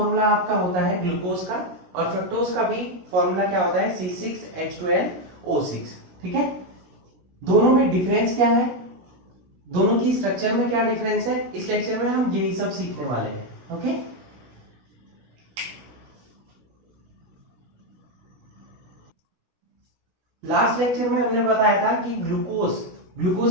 आपका होता है ग्लूकोज का, और फ्रक्टोज का भी फॉर्मूला क्या होता है? C6H12O6. ठीक है, दोनों में डिफरेंस क्या है, दोनों की स्ट्रक्चर में क्या डिफरेंस है, इस लेक्चर में हम यही सब सीखने वाले हैं. ओके, लास्ट लेक्चर में हमने बताया था कि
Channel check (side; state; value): left; late; 16 ms